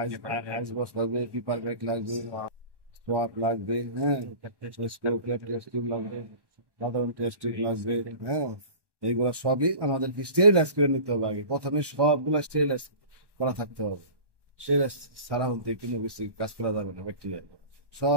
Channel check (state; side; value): late; left; 1.1 ms